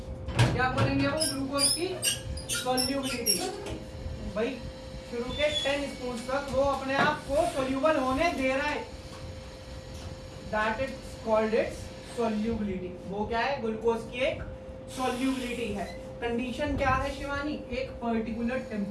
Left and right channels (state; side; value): identical; both; correlation 1.00